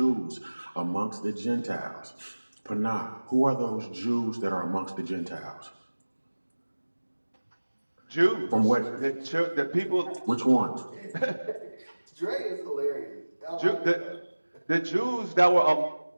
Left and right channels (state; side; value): inverted; both; correlation -1.00